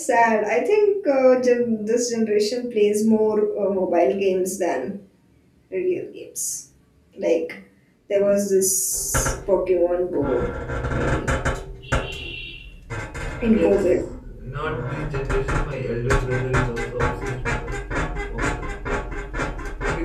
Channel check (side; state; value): both; identical; correlation 1.00